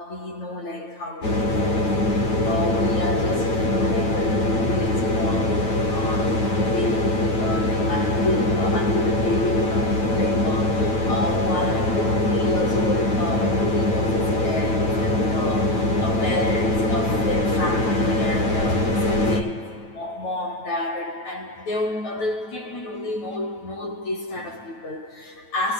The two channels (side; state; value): right; late; 9.1 ms